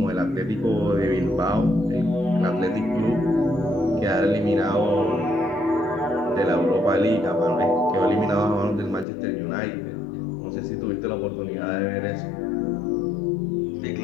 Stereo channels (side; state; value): right; drops out; at 9.1 s